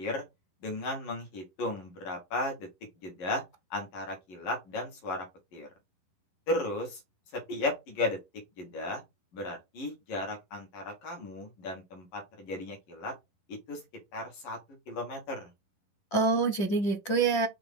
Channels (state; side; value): late; right; 11 ms